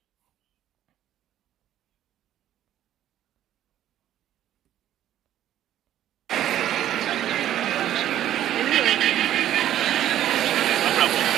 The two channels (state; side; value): quieter; left; 12.0 dB